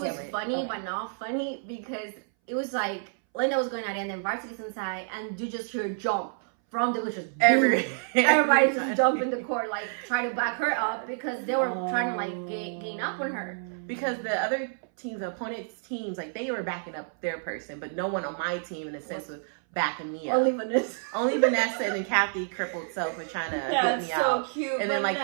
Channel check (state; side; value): silent; left; 59 dB below the other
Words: was funny, but not funny because it was like Linda was going at it, and then varsity's inside, and you just hear jump from the just everybody just jump in the court, like try to back her up because they were trying to like gain up on her. Because the other teams, the opponent's teams, like they were backing up their person, but no one on my team in a sense was backing me up. Only Vanessa and then Kathy crippled self were trying to help me out. So cute. And Vanessa. then like